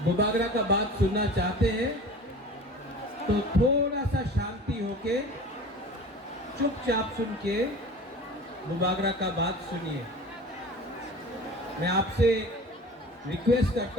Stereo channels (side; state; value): both; normal; correlation 0.39